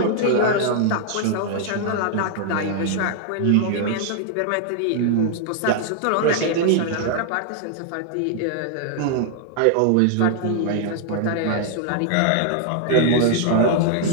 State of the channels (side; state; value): both; different; correlation 0.00